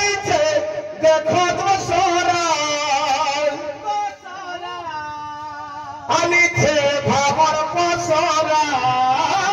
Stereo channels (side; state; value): both; identical; correlation 1.00